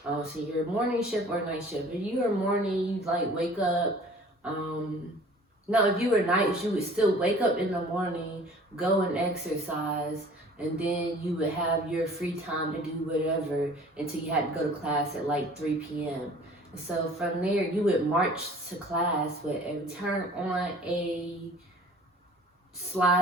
So you're morning shift or night shift. If you were morning, you like wake up. No, if you were night, you would still wake up in the morning, go and exercise, and then you would have your free time to do whatever until you had to go to class at like 3 p.m. So from there, you would march to class, but turn on a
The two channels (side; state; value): both; normal; correlation 0.49